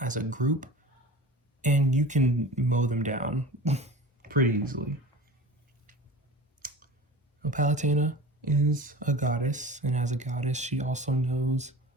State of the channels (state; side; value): normal; both; correlation 0.37